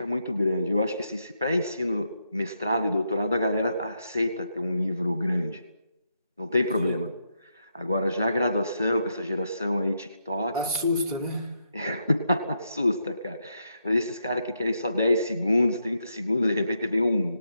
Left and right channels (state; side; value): inverted; both; correlation -0.81